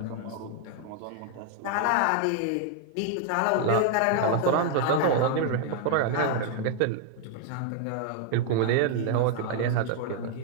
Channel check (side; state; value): both; different; correlation 0.00